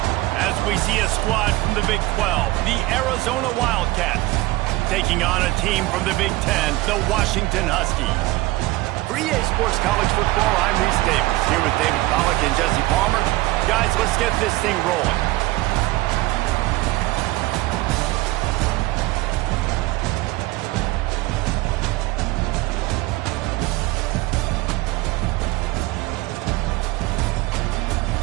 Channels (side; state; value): left; quieter; 19.6 dB